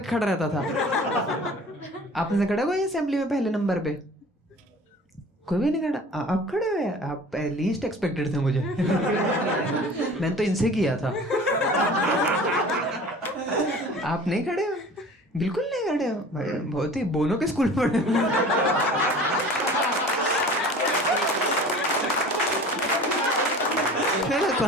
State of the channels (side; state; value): both; normal; correlation 0.43